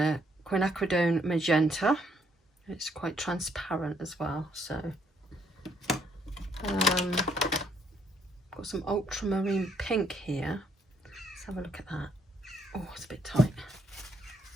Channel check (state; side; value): normal; both; correlation 0.70